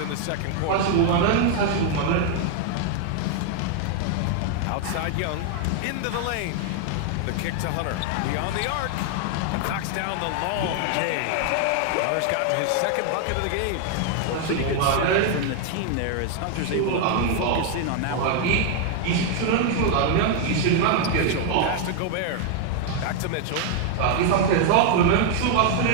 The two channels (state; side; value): different; both; correlation 0.00